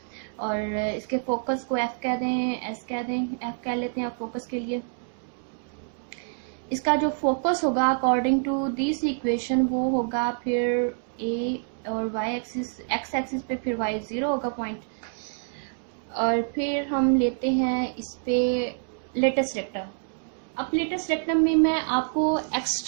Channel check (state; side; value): silent; left; digital silence